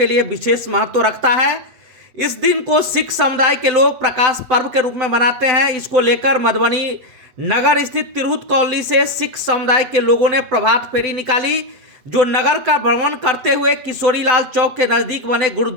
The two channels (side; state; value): left; late; 7.9 ms